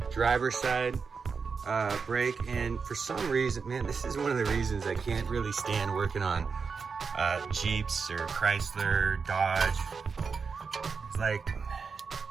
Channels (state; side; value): quieter; left; 5.3 dB